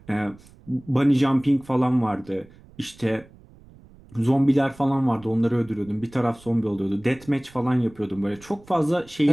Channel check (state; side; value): noise; right; rumble, 24 dB below the sound